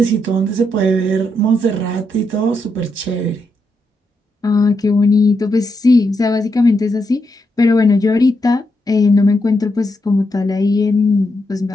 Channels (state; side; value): normal; both; correlation 0.82